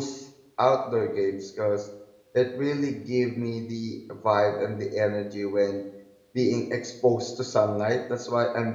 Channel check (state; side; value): identical; both; correlation 1.00